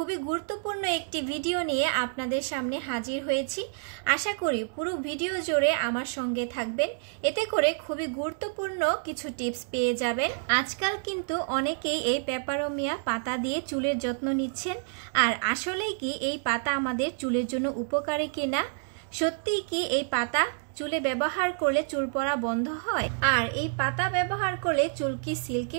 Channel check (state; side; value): silent; left; digital silence